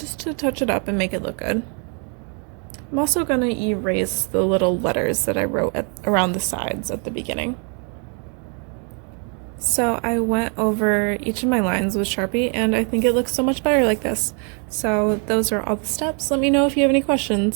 to touch it up and make it look good. I'm also going to erase the little letters that I wrote around the sides at the beginning. So I went over each of my lines with Sharpie and I think it looks so much better like this. So those are all the steps. Let me know if you have any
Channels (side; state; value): left; quieter; 39.1 dB